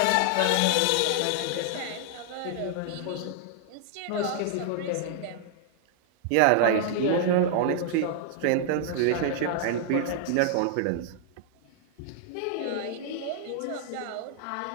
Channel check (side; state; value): both; different; correlation -0.01